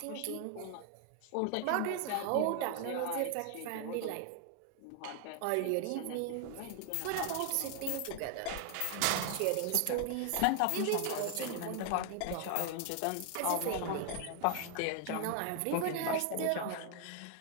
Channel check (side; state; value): both; different; correlation 0.00